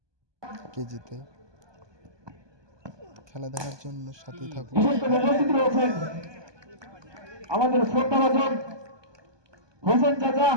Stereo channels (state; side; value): late; left; 1.2 ms